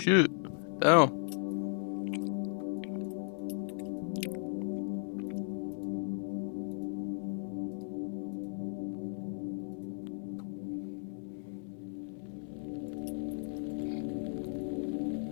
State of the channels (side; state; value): right; silent; 54 dB below the other